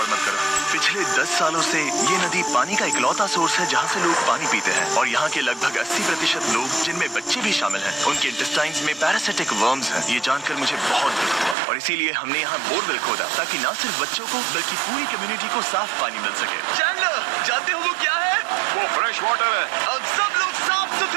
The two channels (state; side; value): drops out; left; at 11.6 s